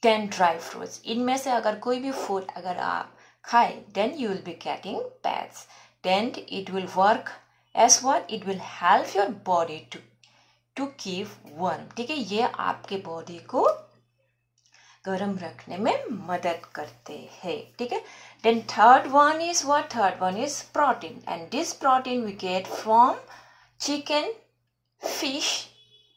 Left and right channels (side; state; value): both; identical; correlation 1.00